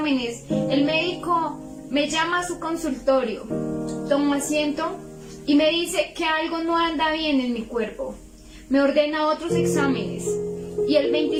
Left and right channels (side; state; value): both; identical; correlation 1.00